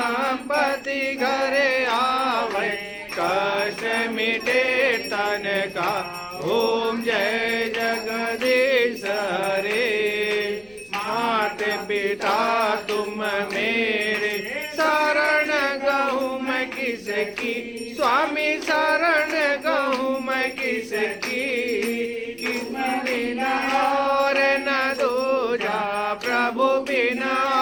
घरे आवे कष्ट मिटे तन का ओम जय जगदीश हरे मात पिता तुम मेरे शरण गहूँ मैं किसकी स्वामी शरण गहूँ मैं किसकी बिना और न दूजा प्रभु बिना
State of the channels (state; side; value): noise; left; rumble, 28 dB below the sound